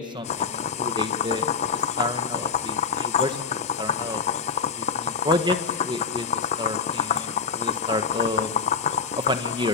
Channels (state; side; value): quieter; right; 5.4 dB